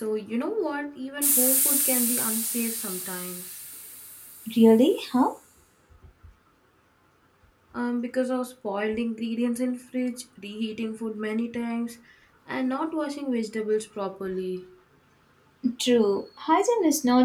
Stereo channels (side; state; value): both; identical; correlation 1.00